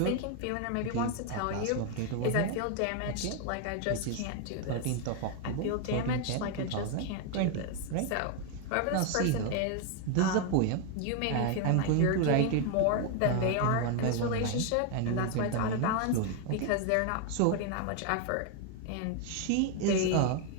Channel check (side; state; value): both; different; correlation 0.01